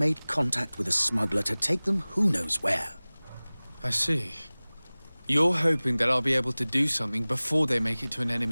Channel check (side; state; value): both; inverted; correlation -1.00